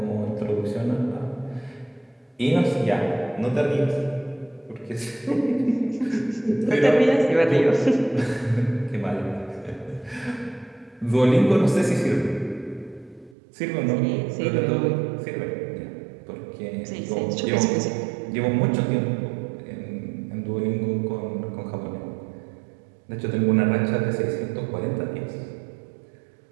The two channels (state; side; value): drops out; left; at 13.4 s